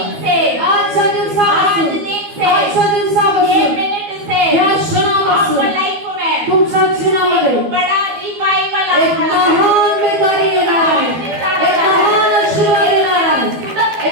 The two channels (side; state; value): left; late; 12 ms